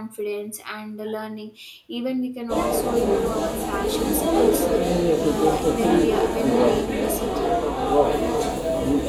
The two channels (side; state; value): both; identical; correlation 1.00